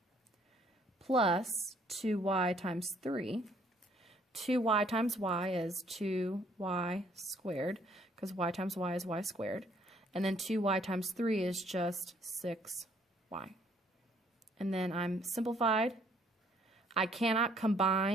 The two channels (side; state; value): both; normal; correlation 0.64